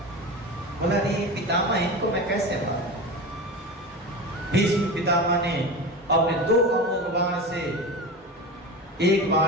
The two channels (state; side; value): normal; both; correlation 0.27